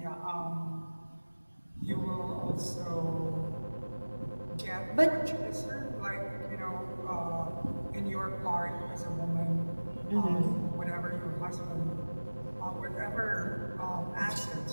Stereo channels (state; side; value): inverted; both; correlation -1.00